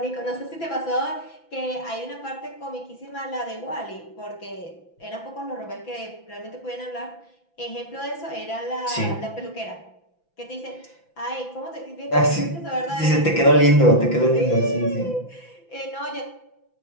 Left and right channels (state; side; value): late; right; 5.9 ms